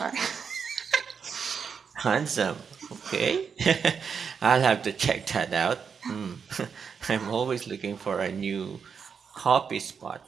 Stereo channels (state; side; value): quieter; left; 6.4 dB